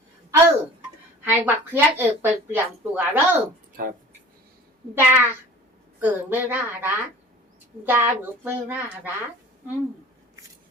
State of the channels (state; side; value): normal; both; correlation 0.44